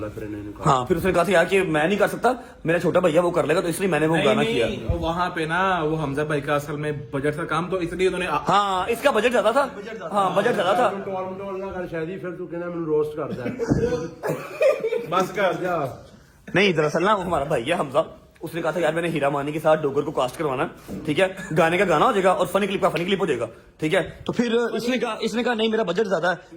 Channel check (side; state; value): both; identical; correlation 1.00